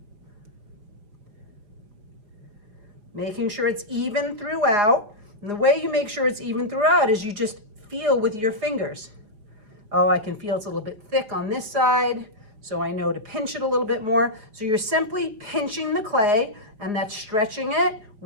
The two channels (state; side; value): late; left; 4.9 ms